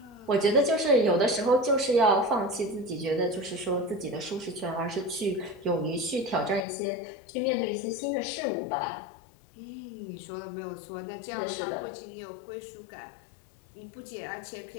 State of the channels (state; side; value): drops out; right; at 6.7 s